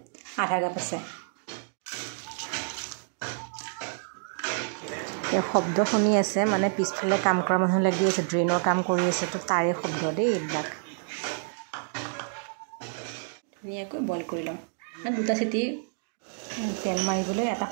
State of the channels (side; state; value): left; silent; digital silence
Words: আধা কাপ আছে। এয়া শব্দ শুনি আছে, মানে পিছফালে কাম কৰা মানুহ লাগি আছে, ড্ৰেইনৰ কাম কৰি আছে, তো তাৰে শব্দ দেই এইবিলাক। ধুনীয়াকৈ বইল কৰি ল'ম। দুটা চিটি তেল মাৰিবলৈ এটা